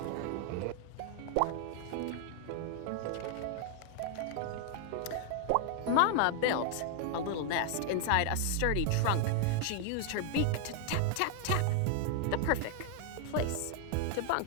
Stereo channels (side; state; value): both; different; correlation 0.00